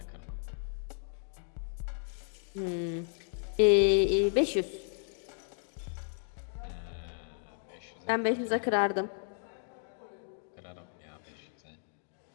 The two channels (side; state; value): right; silent; 55 dB below the other